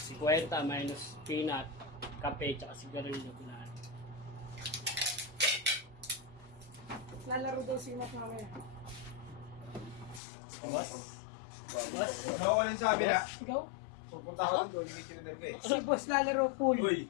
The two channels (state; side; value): drops out; right; at 10.2 s